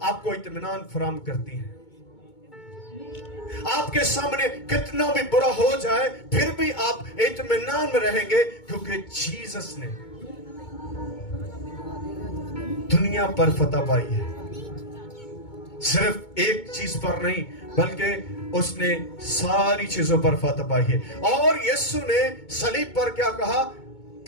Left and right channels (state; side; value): late; right; 2.2 ms